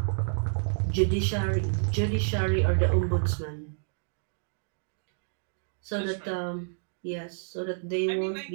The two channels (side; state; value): left; silent; digital silence